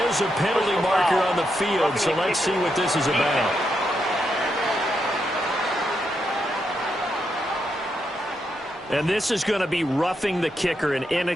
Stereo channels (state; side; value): normal; both; correlation 0.82